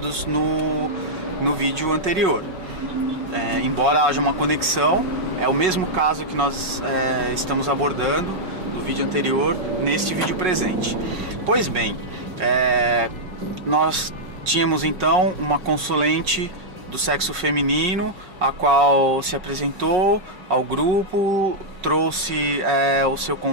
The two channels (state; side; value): late; left; 5.4 ms